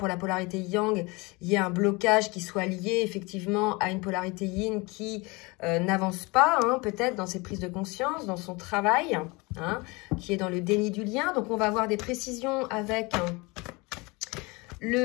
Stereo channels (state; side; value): quieter; right; 25.9 dB